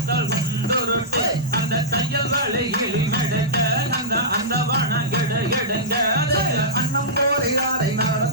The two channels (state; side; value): normal; both; correlation -0.14